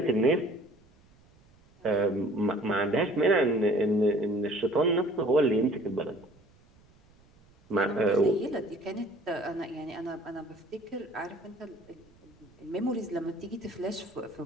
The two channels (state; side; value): noise; right; rumble, 30 dB below the sound